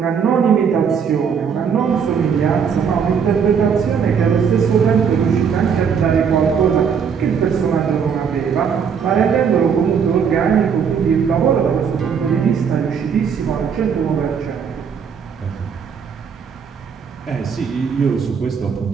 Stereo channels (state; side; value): quieter; left; 6.8 dB